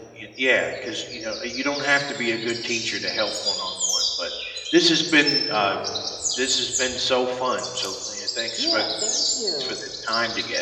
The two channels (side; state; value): both; identical; correlation 1.00